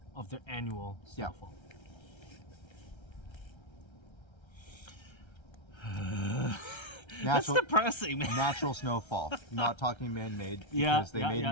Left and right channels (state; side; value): late; right; 1.3 ms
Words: Of their annual snowfall. That's depressing, man. Natural snowfall, not talking man-made, because they made